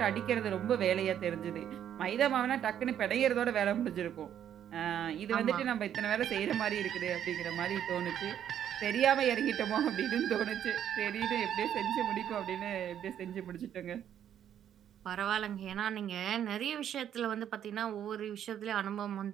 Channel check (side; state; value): left; quieter; 9.9 dB